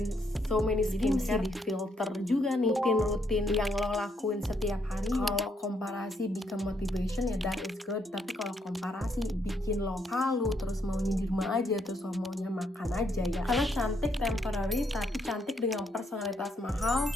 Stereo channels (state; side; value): normal; both; correlation 0.74